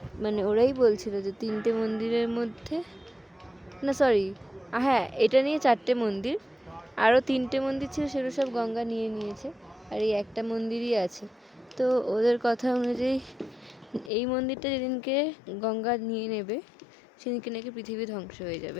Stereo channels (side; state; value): right; drops out; at 14.1 s